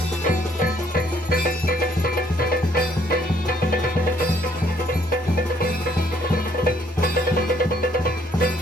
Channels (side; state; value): both; normal; correlation 0.65